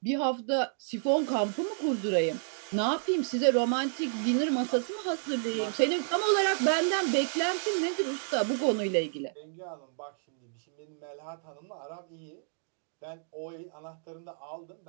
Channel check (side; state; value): left; silent; digital silence